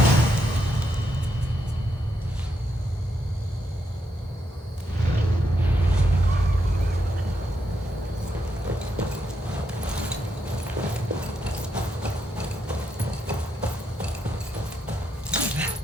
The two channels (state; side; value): normal; both; correlation 0.80